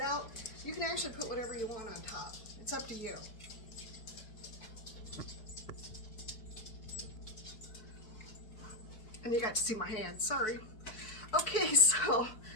You can actually put whatever you want on top. It's up to you. And you got to see my hands, sorry. Okay, so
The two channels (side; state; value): right; late; 4.6 ms